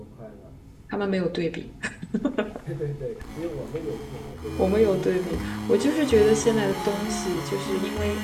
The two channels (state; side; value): identical; both; correlation 1.00